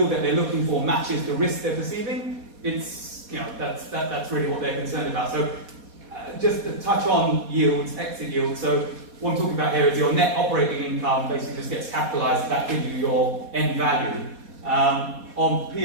that they're looking for matches the risk they're perceiving, it's that's really what they're concerned about. So, just to touch on yields, exit yields. So, what I'm talking about here is your net operating income basically just gets capitalised. That gives you your end value.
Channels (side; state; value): left; late; 4.2 ms